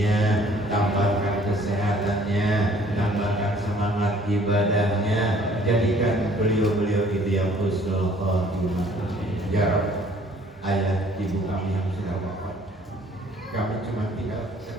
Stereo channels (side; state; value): both; normal; correlation 0.57